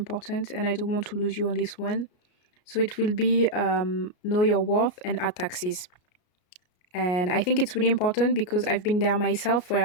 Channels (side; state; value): right; late; 33 ms